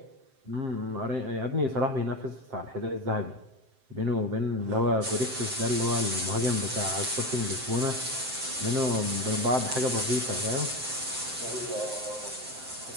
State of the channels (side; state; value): left; late; 7.6 ms